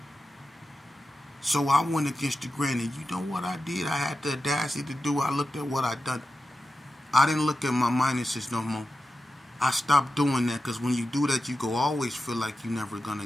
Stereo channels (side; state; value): both; normal; correlation 0.92